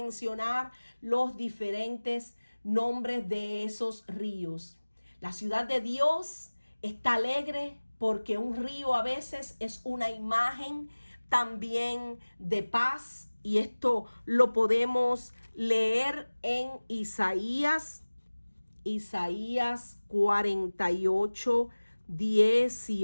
los diferentes nombres de esos ríos. La ciudad de Dios está alegre porque un río a veces es una imagen también de paz, y esto lo podemos leer en Isaías 48,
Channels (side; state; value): both; inverted; correlation -1.00